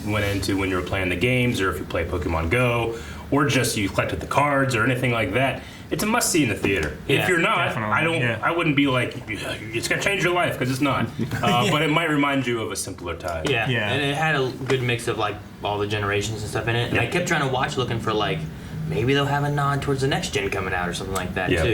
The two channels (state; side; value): identical; both; correlation 1.00